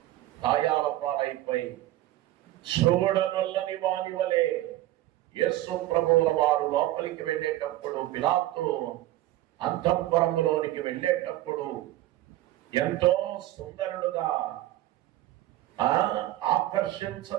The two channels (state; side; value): quieter; left; 15.3 dB